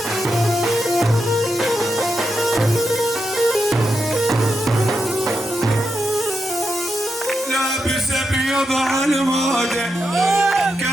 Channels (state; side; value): normal; both; correlation 0.86